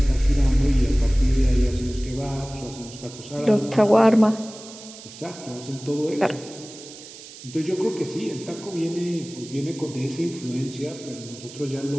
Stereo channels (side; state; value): right; noise; hiss, 16 dB below the sound